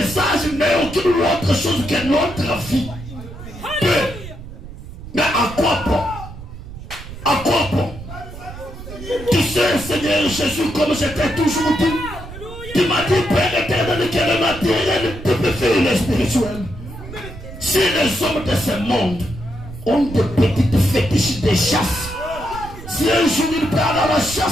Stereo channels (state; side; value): noise; right; rumble, 13 dB below the sound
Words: n'est aucune autre chose que notre vie. Mais à quoi bon? À quoi bon? Tu sais, Seigneur Jésus, comme je t'ai toujours dit, tu m'as dit, Père éternel, que le matériel te peut faire le spirituel. Si les hommes de ce monde ont des petites fétiches de chasse, si un jour il part à la